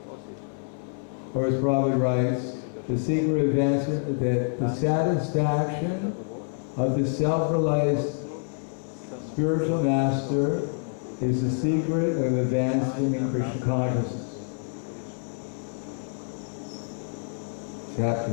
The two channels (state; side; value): silent; right; 60 dB below the other